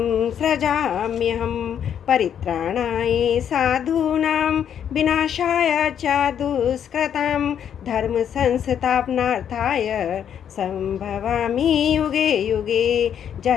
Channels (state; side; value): quieter; right; 8.9 dB